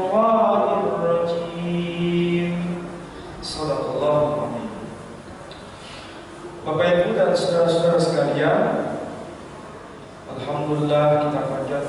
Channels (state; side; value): identical; both; correlation 1.00